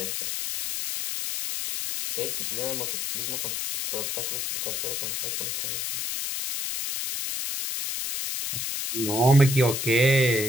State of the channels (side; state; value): left; noise; hiss, 2 dB below the sound